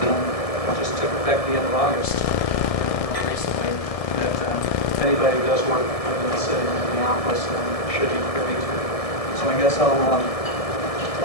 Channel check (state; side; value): late; right; 1.7 ms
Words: just took effect the end of August recently, that anybody who does work within the city of Minneapolis should be privy to. So I guess I'll